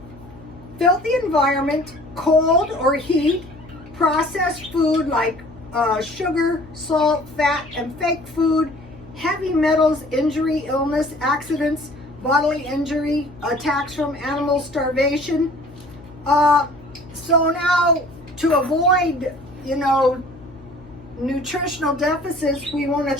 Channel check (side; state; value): left; noise; hum, 20 dB below the sound